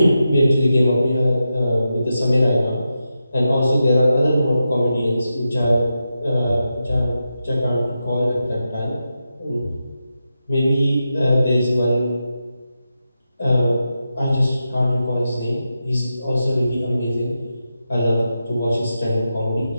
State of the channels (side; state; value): both; inverted; correlation -0.89